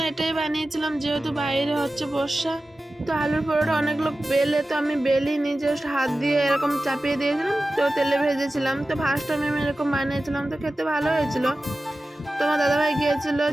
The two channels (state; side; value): normal; both; correlation 0.95